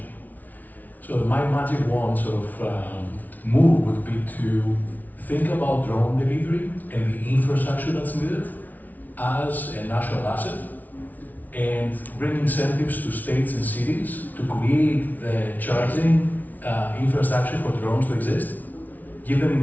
So my magic wand sort of move would be to think about drone delivery and the infrastructure that's needed as a national asset, and bring incentives to states and cities to create the charging infrastructure for drones to exist, give them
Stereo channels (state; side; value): late; right; 0.078 ms